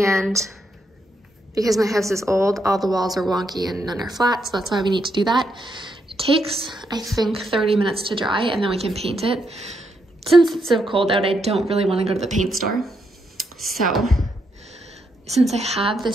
because my house is old, all the walls are wonky and none are flat, so that's why we need to do that. It takes, I think, 30 minutes to dry, and then we can paint it. Since it's so cold out, I don't really want to go to the paint store. So since I have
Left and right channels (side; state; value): both; normal; correlation 0.79